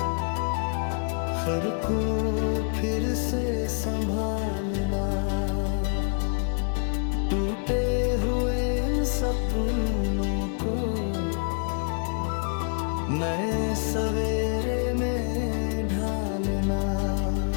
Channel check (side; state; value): right; silent; 60 dB below the other